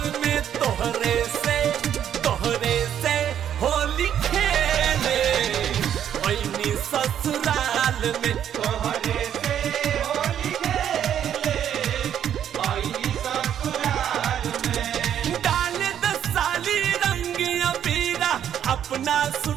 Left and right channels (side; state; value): left; quieter; 9.7 dB